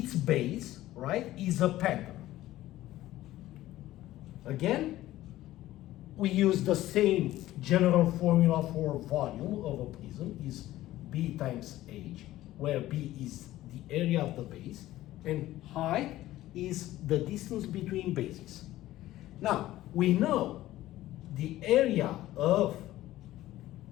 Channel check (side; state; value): right; quieter; 15.3 dB